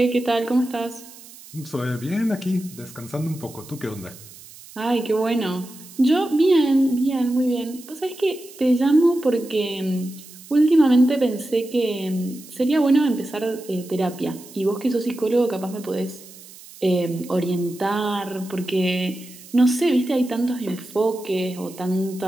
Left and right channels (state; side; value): noise; right; hiss, 19 dB below the sound